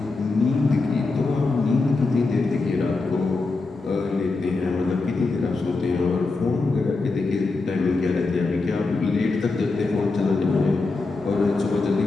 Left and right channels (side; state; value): right; quieter; 3.7 dB